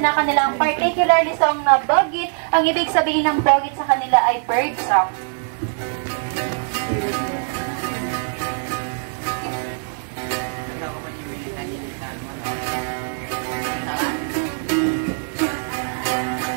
kanilang particularly song na bogit. Ang ibig sabihin ng bogit sa kanila ay bird song.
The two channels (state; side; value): silent; left; 62 dB below the other